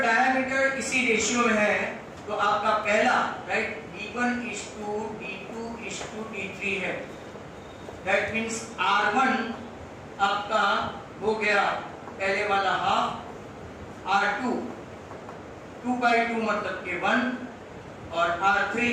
diameter इसी ratio में है तो आपका पहला, right, d1 is to d2 is to d3 है। दैट मीन्स r1 आपका हो गया पहले वाला हाफ, r2 2/2 मतलब के 1, और r3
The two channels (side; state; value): both; identical; correlation 1.00